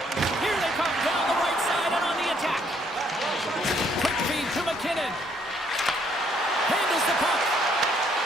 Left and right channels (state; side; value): normal; both; correlation 0.68